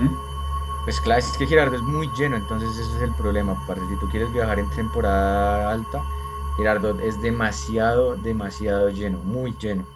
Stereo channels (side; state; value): both; identical; correlation 1.00